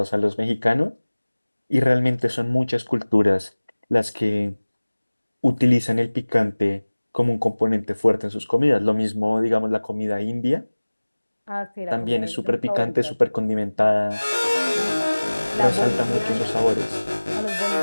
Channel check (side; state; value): both; inverted; correlation -1.00